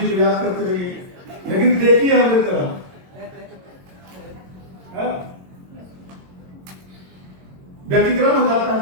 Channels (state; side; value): late; left; 22 ms